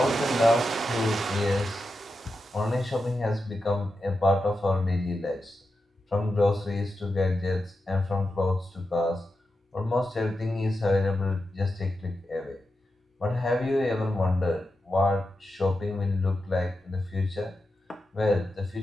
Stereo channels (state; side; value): normal; both; correlation 0.89